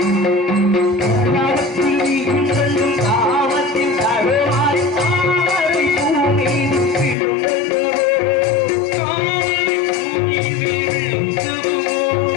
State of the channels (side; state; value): right; drops out; at 7.2 s